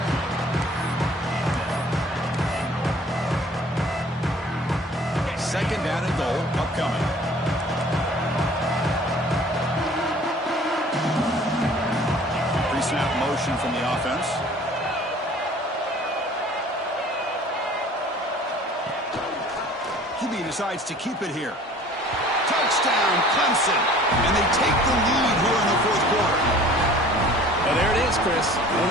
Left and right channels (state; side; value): normal; both; correlation 0.50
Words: Second down and goal upcoming. Pre-snap motion from the offense. QB decides to keep it here. Touchdown, Clemson. And they take the lead here in the fourth quarter. Well, there it is, Chris. One